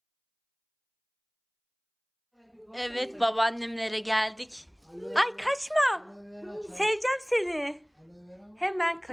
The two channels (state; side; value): identical; both; correlation 1.00